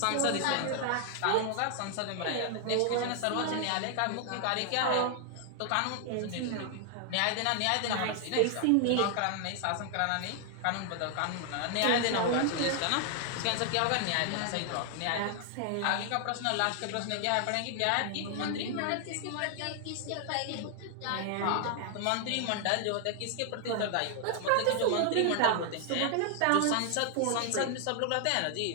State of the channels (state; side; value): different; both; correlation 0.00